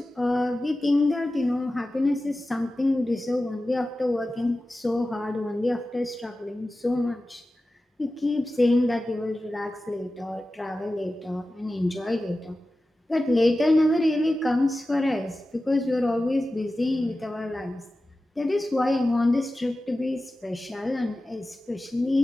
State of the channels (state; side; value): normal; both; correlation 0.95